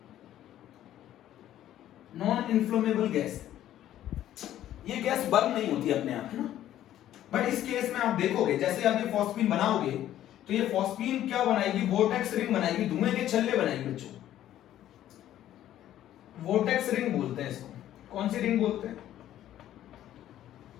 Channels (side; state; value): right; quieter; 12.4 dB